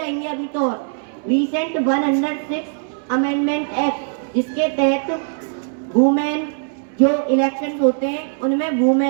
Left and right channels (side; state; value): left; silent; 63 dB below the other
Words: अभी तो, रिसेंट 106 अमेंडमेंट एक्ट, जिसके तहत वुमेन जो इलेक्शन होते हैं उनमें